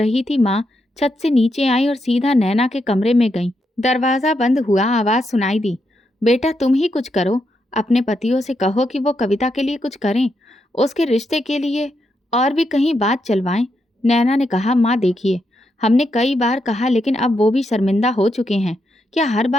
थी, माँ छत से नीचे आई और सीधा नैना के कमरे में गई। दरवाज़ा बंद हुआ, आवाज़ सुनाई दी, बेटा तुम ही कुछ करो। अपने पतियों से कहो कि वो कविता के लिए कुछ करें, उसके रिश्ते के लिए, और भी कहीं बात चलवाएं। नैना ने कहा, माँ देखिए, हमने कई बार कहा लेकिन अब वो भी शर्मिंदा हो चुके हैं। क्या हर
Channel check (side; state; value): both; normal; correlation 0.82